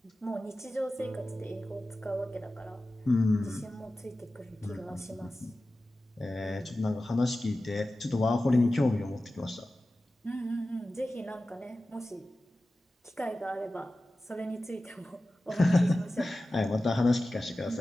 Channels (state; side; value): normal; both; correlation 0.95